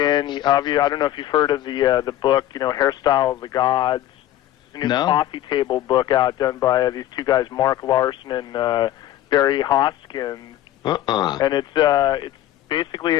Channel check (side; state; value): right; quieter; 13.4 dB